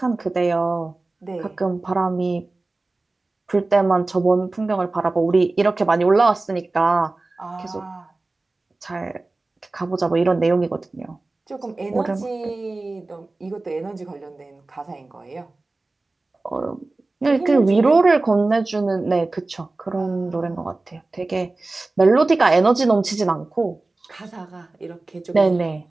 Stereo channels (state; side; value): quieter; left; 3.2 dB